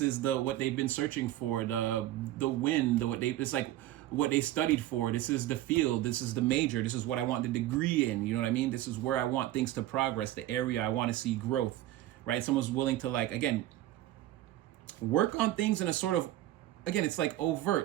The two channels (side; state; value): left; quieter; 14.6 dB